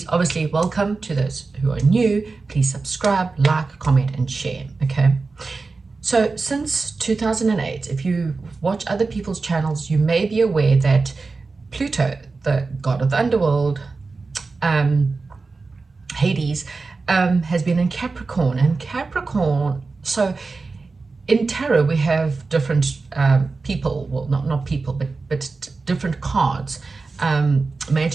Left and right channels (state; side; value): quieter; left; 4.0 dB